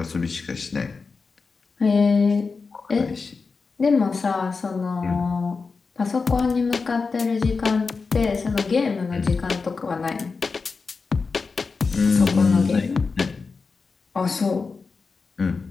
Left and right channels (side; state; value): right; quieter; 4.6 dB